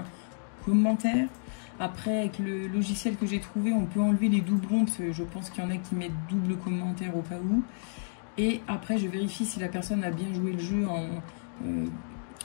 commentaires. Après, avec le logiciel que j'ai trouvé, on peut enlever les doublons, parce que je pense qu'il y en a qui mettent double commentaire au cas où. Et après, je vérifie si la personne a bien joué le jeu en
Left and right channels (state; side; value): silent; right; digital silence